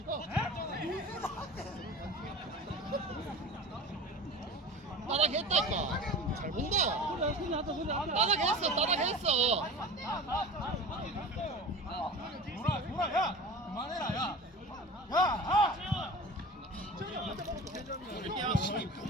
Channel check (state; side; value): normal; both; correlation 0.36